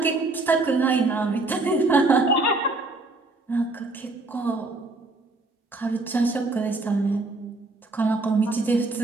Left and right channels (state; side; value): quieter; left; 3.1 dB